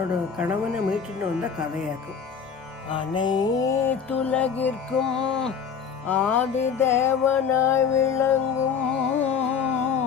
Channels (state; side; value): quieter; right; 6.8 dB